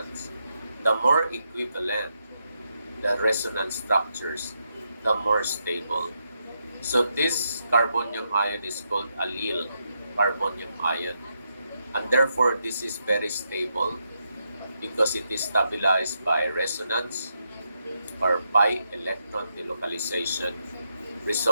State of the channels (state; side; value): inverted; both; correlation -0.82